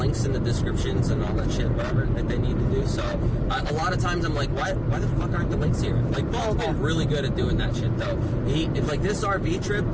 in the descriptions and all that shit, whatever, that they need to do. So, a lot of times I'm like, why the fuck aren't the links here? Like, Bone's been really good at doing that shit, though. This RV trip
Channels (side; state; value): both; identical; correlation 1.00